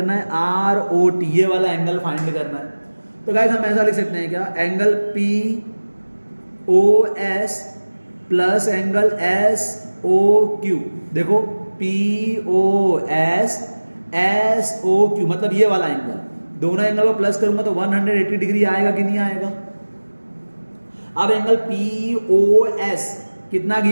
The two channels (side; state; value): both; inverted; correlation -1.00